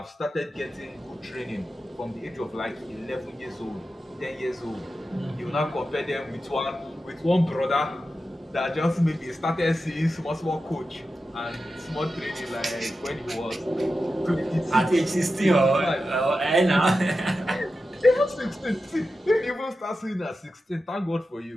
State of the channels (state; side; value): normal; both; correlation 0.91